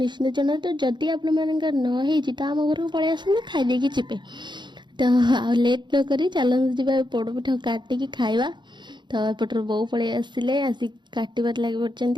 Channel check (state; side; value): late; left; 0.22 ms